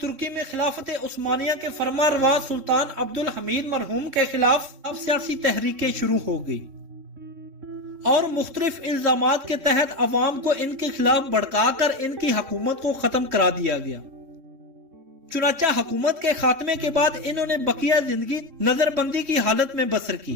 ترکی میں خلافت عثمانیہ کے فرما روا سلطان عبدالحمید مرحوم کے خلاف سیاسی تحریکیں شروع ہو گئی اور مختلف الزامات کے تحت عوام کو ان کے خلاف بھڑکا کر ان کی حکومت کو ختم کرا دیا گیا۔ چنانچہ حکومت کے خاتمے کے بعد انہوں نے بقیہ زندگی نظر بندی کی حالت میں بسر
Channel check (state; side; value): late; left; 3.7 ms